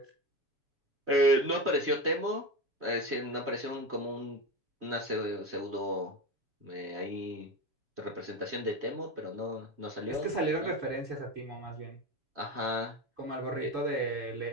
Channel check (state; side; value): late; left; 7.1 ms